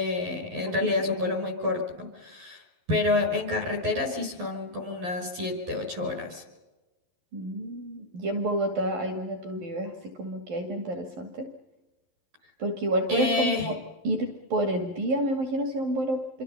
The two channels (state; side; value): late; left; 11 ms